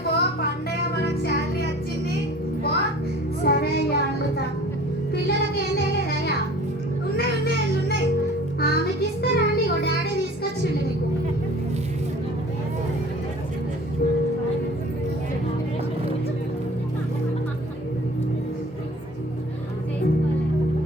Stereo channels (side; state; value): both; normal; correlation 0.46